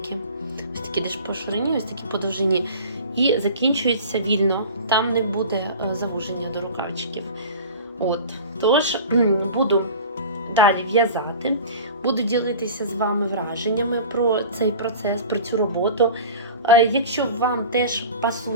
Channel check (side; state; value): both; inverted; correlation -0.38